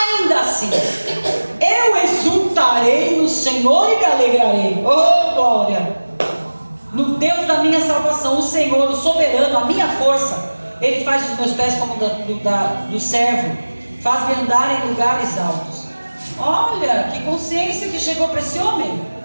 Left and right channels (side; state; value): both; inverted; correlation -1.00